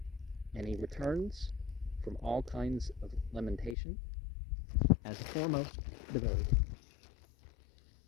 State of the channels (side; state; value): right; drops out; at 3.8 s